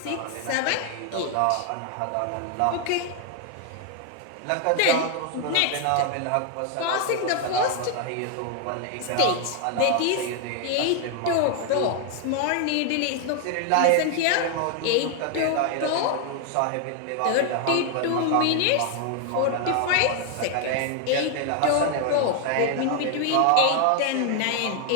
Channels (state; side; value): different; both; correlation 0.00